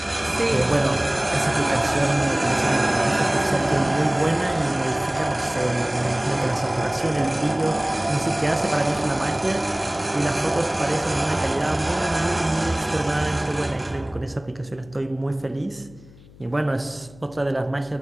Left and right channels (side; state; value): left; noise; hum, 23 dB below the sound